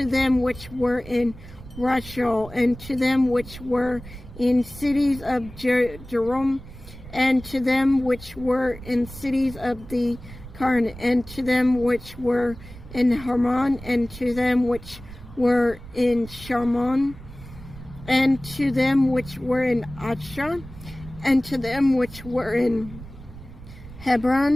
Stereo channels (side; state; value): right; noise; rumble, 16 dB below the sound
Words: them which were in Rachel, and to them which were in cities of Jerome, and to them which were in cities of the Karn, and to them which were in Hermon, and to them which were in Sharmon, and to them which were in Achshah, and to them which were in